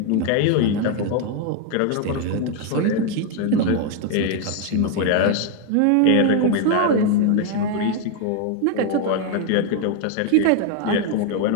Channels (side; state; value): both; different; correlation 0.01